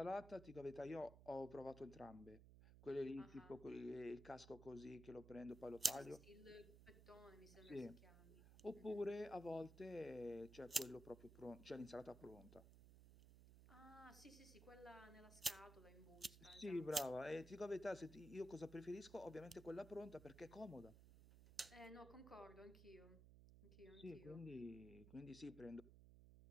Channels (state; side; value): noise; right; hum, 16 dB below the sound